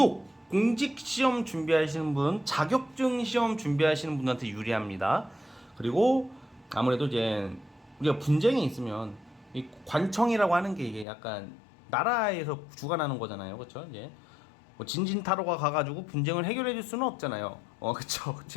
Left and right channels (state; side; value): drops out; right; at 11.1 s